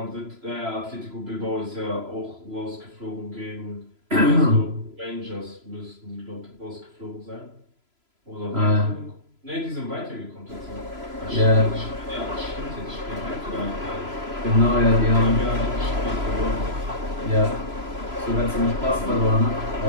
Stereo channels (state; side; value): late; left; 3.0 ms